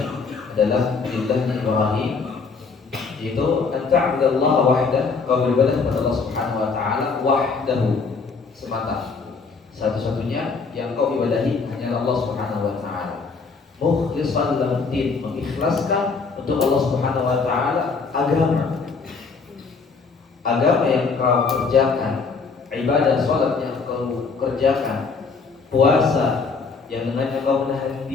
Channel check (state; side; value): quieter; right; 4.8 dB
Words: adalah millahnya Ibrahim, yaitu an-ta'budallaha wahdah, kau beribadah kepada Allah Subhanahu wa taala wahdahu, semata, satu-satunya yang kau ibadahi hanya Allah Subhanahu wa taala. Mukhlishan lahu din, mengikhlaskan untuk Allah Subhanahu wa taala agama. agama yang kau kerjakan, ibadah sholat yang kau kerjakan, puasa yang dengannya kau menahan